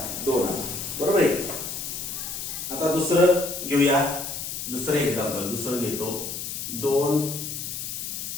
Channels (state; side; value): noise; left; hiss, 6 dB below the sound